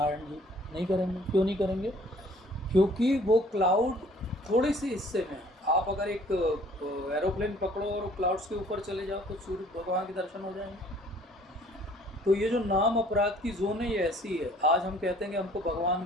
जी? नहीं करेंगे। क्यों नहीं करेंगे? क्योंकि वो क्लाउड थोड़े से हिस्से में, आप अगर एक एरोप्लेन पकड़ो और क्लाउड्स के ऊपर चले जाओ तो सूर्य भगवान के दर्शन हो जाएंगे। तो ये जो नाम अपराध की जोन है ये ऐसी है। आज हम कहते हैं कि हमको भगवान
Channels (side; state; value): both; normal; correlation 0.56